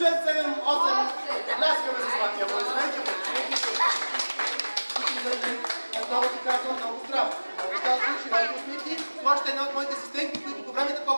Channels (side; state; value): both; inverted; correlation -1.00